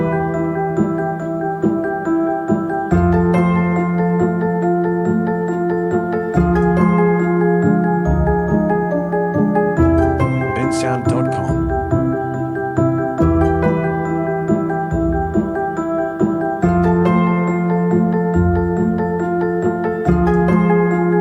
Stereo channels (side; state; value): both; identical; correlation 1.00